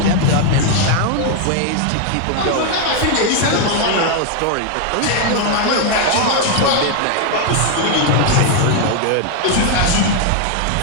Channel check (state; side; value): different; both; correlation 0.01